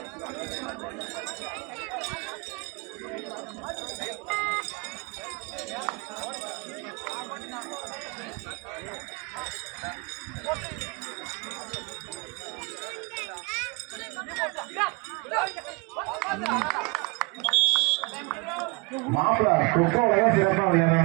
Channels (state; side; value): quieter; left; 28.2 dB